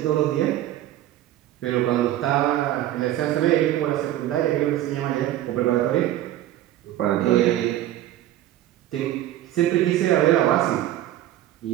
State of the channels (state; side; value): quieter; left; 13.4 dB